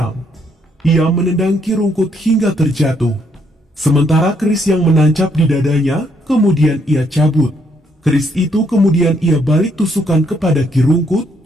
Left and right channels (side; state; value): both; normal; correlation 0.71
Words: Ia menendang Ki Rungkut hingga terjatuh. Sementara keris yang menancap di dadanya, kemudian ia cabut. Keris itu kemudian ia balik tusukan kepada Ki Rungkut,